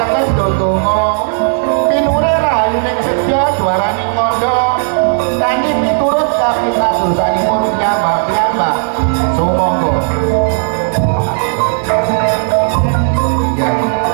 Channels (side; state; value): left; silent; 70 dB below the other